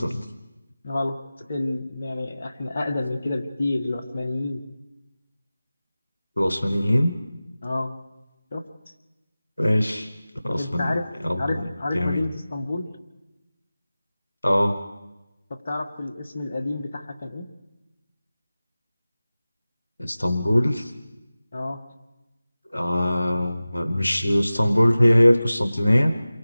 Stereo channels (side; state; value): both; inverted; correlation -0.96